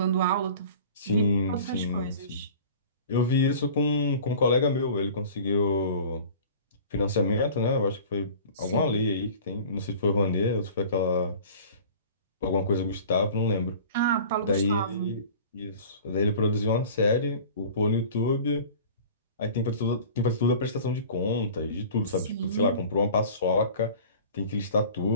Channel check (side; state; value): both; inverted; correlation -0.42